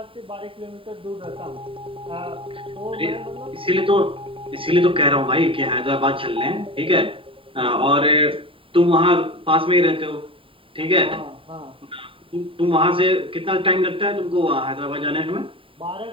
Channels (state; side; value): late; left; 0.26 ms